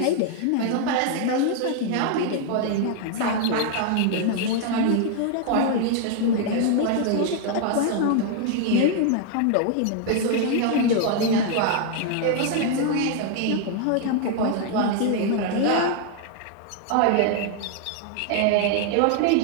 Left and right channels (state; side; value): different; both; correlation 0.00